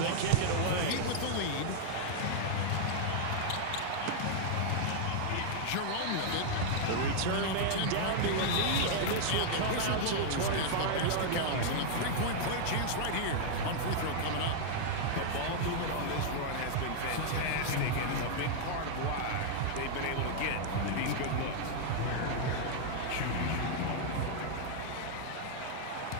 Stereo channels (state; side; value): different; both; correlation -0.01